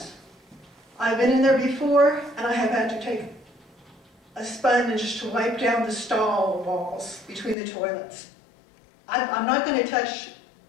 I've been in there before, and I have had to take a sponge to wipe down the stall walls between the toilets. I'm not going to touch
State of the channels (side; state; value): right; drops out; at 7.6 s